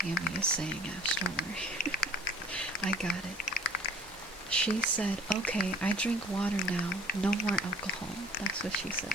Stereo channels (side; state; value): both; normal; correlation 0.51